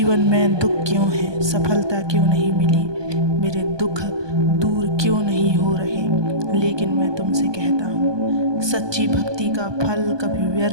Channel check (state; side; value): late; left; 1.2 ms